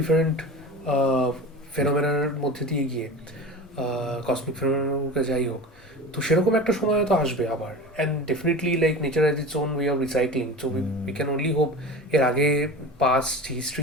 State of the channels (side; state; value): both; normal; correlation 0.32